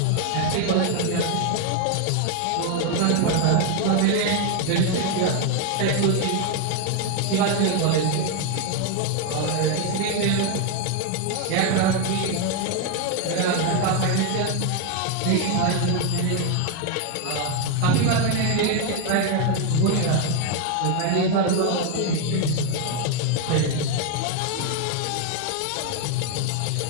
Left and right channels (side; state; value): both; different; correlation 0.01